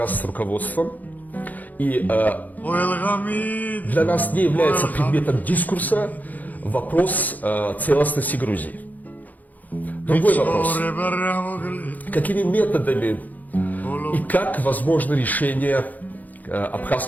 руководством, и для нас не является предметом дискурса вопрос целостности Грузии. Другой вопрос. Какими методами и как возможно решение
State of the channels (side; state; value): right; late; 0.081 ms